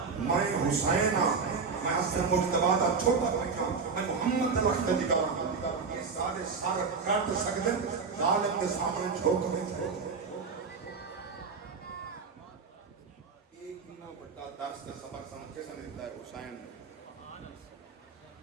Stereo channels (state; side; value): quieter; left; 5.1 dB